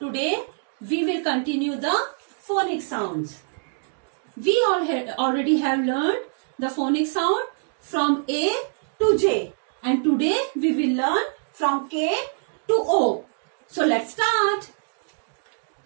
we will continue the phonic sounds. We already have learned the phonic sound from A to J and today we will learn from K to O. So let's start.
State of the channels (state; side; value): silent; left; digital silence